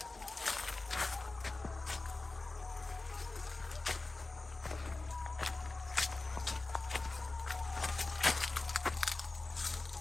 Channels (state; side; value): quieter; right; 3.3 dB